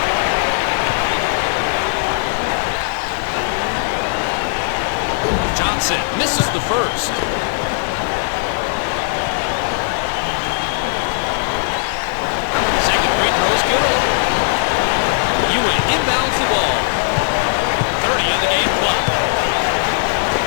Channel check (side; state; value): right; silent; 62 dB below the other